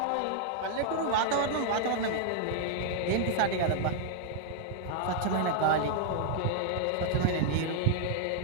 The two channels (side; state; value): both; different; correlation -0.01